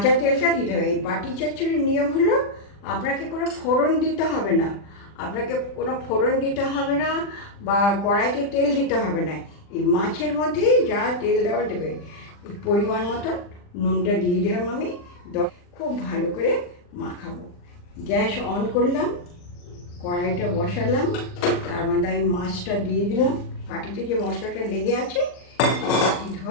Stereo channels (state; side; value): late; right; 40 ms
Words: তেলটা দিতে হবে। এই বাটি চচ্চড়ির নিয়ম হলো আপনাকে কোনো ফোড়ন দিতে হবে না, বা কড়াইতে তেল দিতে হবে না। এই মাছের মধ্যেই যা তেল দেওয়া দেবে, এই পরিমাণ মতন নুনটা দিয়ে দিলাম আমি, খুব ভালো করে মাখাবো। গ্যাস অন করলাম, কড়াইটা বসালাম, তার মধ্যে আমি মাছটা দিয়ে দিলাম। বাটিতে যে মশলাটা লেগে আছে, বাটি